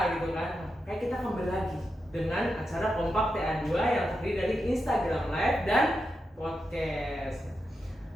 gitu kan. Nah, kayak kita kembali lagi dengan acara Kompak TA2 yang terdiri dari Instagram Live dan podcast.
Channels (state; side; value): normal; both; correlation 0.87